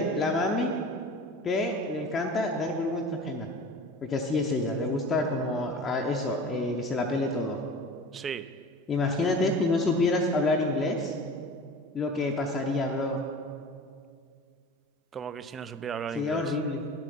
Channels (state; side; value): normal; both; correlation 0.38